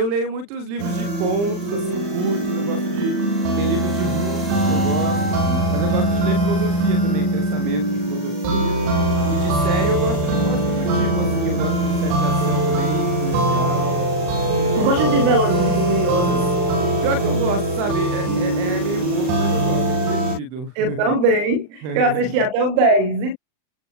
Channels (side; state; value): left; late; 39 ms